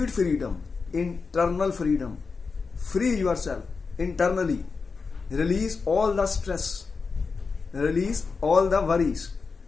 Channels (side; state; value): right; quieter; 4.8 dB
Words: freedom, internal freedom. Free yourself internally. Release all the stress. Release all the worries.